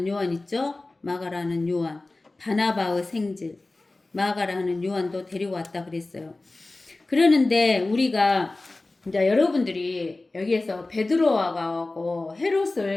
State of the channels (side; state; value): right; quieter; 3.1 dB